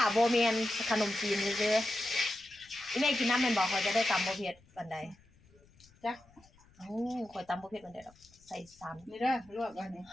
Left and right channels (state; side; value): noise; left; rumble, 29 dB below the sound